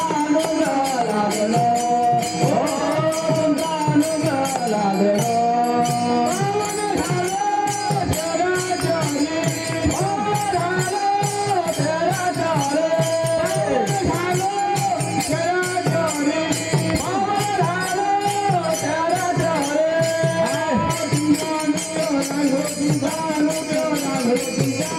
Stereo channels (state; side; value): identical; both; correlation 1.00